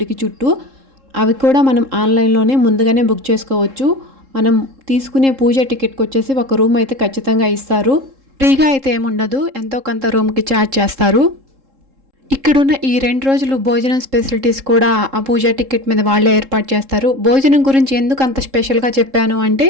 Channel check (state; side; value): late; left; 3.7 ms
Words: చుట్టూ అవి కూడా మనం ఆన్లైన్లోనే ముందుగానే బుక్ చేసుకోవచ్చు. మనం తీసుకునే పూజ టికెట్కి వచ్చేసి ఒక రూమ్ అయితే ఖచ్చితంగా ఇస్తారు. ఫ్రీగా అయితే ఏముండదు, ఎంతో కొంత రూమ్కి ఛార్జ్ చేస్తారు. ఇక్కడున్న ఈ 2 రోజులు భోజనం ఫెసిలిటీస్ కూడా ఆ పూజ టికెట్ మీద వాళ్ళే ఏర్పాటు చేస్తారు. భోజనం గురించి ఎందుకు అంత స్పెషల్గా చెప్పాను అంటే